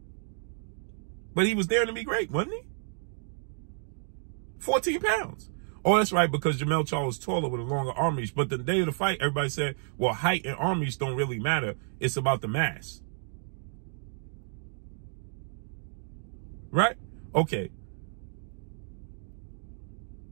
But he was daring to be great, wasn't he? 14 pounds. Oh, that's right, because Jermell Charlo is taller with a longer arm reach. But the day of the fight, everybody said, well, height and arm reach don't really matter. It's about the mass. Right? Okay.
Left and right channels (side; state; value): left; silent; 56 dB below the other